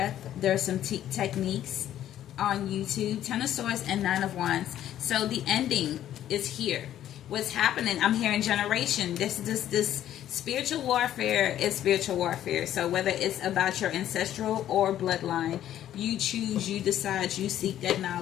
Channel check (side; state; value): right; quieter; 11.7 dB